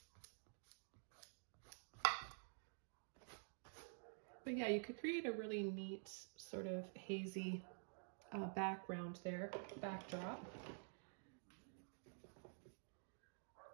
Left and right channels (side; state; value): left; silent; digital silence